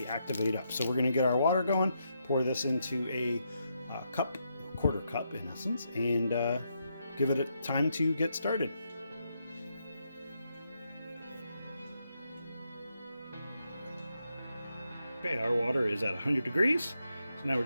activate up. So we're going to get our water going, pour this into a quarter cup in essence, and give it a time to get started. Okay, our water is at 100 degrees, so now we're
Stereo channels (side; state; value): both; inverted; correlation -0.80